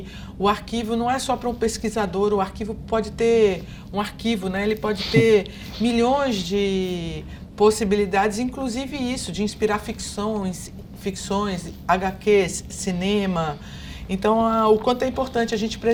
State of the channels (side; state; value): both; identical; correlation 1.00